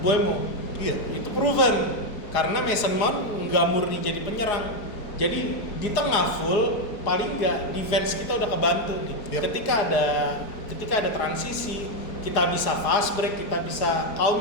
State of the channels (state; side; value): late; right; 4.8 ms